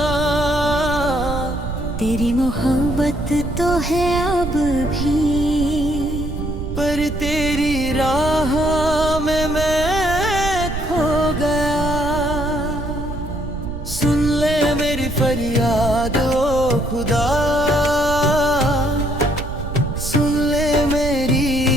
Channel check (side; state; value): right; noise; rumble, 7 dB below the sound